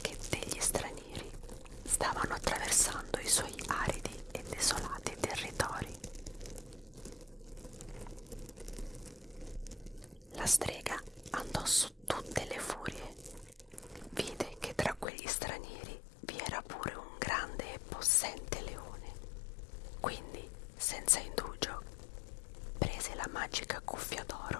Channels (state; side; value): drops out; right; at 15.1 s